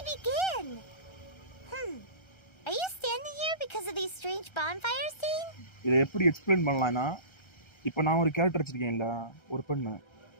begin? Are you standing here because of these strange bonfires, Dane? இதை எப்படி எக்ஸ்பிளைன் பண்ணலாம்னா, இப்போ நான் ஒரு கேரக்டர் வச்சிருக்கேன்ல, ஒரு பெண்ணு.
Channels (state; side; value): late; right; 1.3 ms